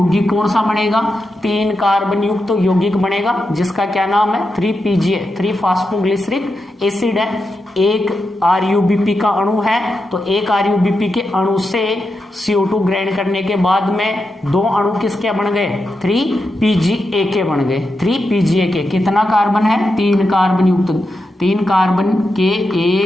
कौन सा बनेगा, 3 कार्बन युक्त तो यौगिक बनेगा जिसका क्या नाम है, 3PGA, 3-फास्फोग्लिसरिक एसिड है। एक RuBP का अणु है तो एक RuBP के अणु से CO2 ग्रहण करने के बाद में 2 अणु किसके बन गए, 3PGA के बन गए। 3PGA के कितना कार्बन है, 3 कार्बन युक्त। 3 कार्बन के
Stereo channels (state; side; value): normal; both; correlation 0.87